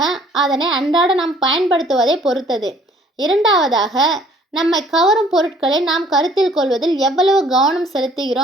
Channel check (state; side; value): normal; both; correlation 0.57